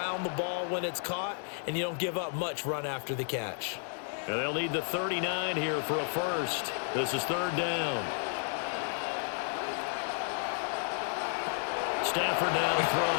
the ball when it's caught, and you don't give up much run after the catch. And they'll need the 39 here for a first. This is 3rd down. Stafford now to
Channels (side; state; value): right; silent; 56 dB below the other